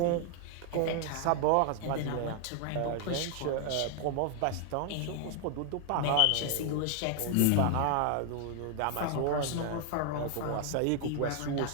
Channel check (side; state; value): both; different; correlation 0.00